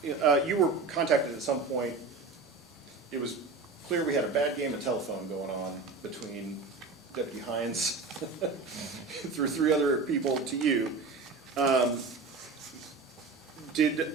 you were contacted at some point. It was clear we had a bad game of telephone going on between Deputy Heyungs through 3 other people to you.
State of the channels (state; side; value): quieter; left; 4.1 dB